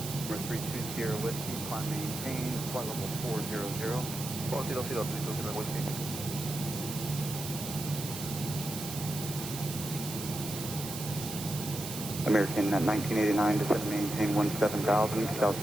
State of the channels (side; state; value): right; noise; hiss, 8 dB below the sound